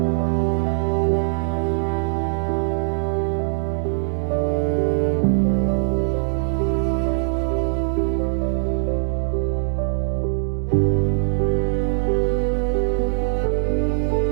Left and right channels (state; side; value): silent; left; 59 dB below the other